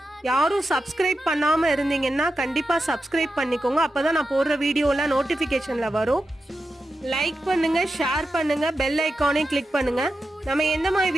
யாரும் சப்ஸ்கிரைப் பண்ணாமல் இருந்தீங்கன்னா கண்டிப்பாக சப்ஸ்கிரைப் பண்ணிக்கோங்க. அப்போ தான் நான் போடுற வீடியோலாம் நோட்டிஃபிகேஷனில் வரும். லைக் பண்ணுங்க, ஷேர் பண்ணுங்க, பெல் ஐக்கானையும் கிளிக் பண்ணுங்க. நம்ம எந்த மாதிரி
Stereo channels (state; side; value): normal; both; correlation 0.90